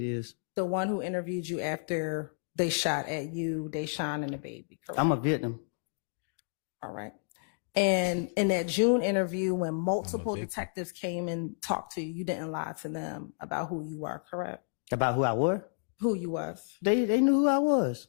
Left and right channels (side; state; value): right; silent; digital silence